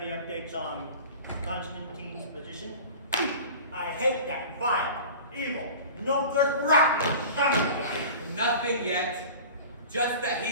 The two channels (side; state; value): both; inverted; correlation -0.38